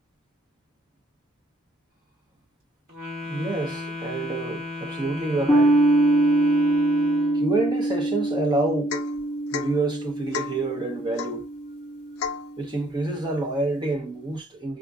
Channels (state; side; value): normal; both; correlation 0.65